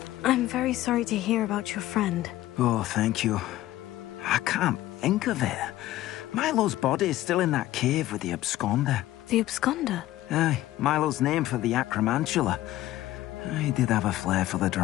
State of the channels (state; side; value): quieter; right; 15.2 dB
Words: I'm very sorry to hear about your friend. Oh, thank you. I can't think of it. Milo's body is still in that cave with the absconder. The absconder? Aye, Milo's name for the acromantula. He did have a flair for the